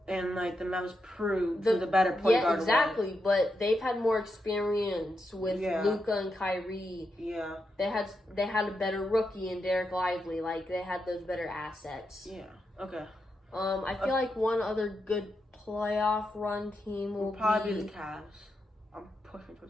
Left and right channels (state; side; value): normal; both; correlation 0.85